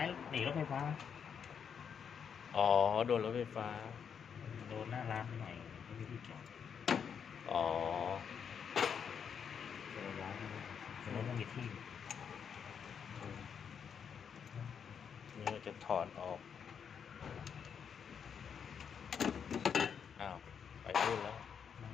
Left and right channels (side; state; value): right; quieter; 7.3 dB